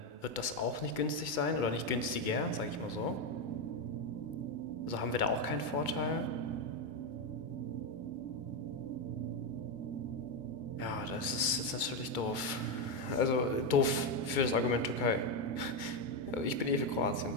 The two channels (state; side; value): late; right; 2.2 ms